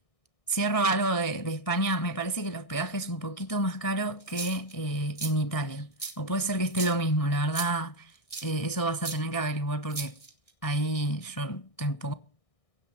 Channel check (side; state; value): right; late; 1.6 ms